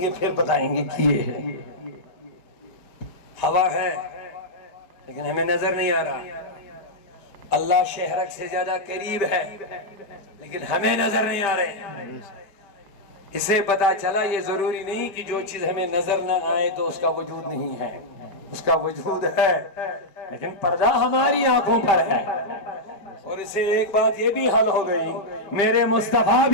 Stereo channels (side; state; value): right; late; 5.1 ms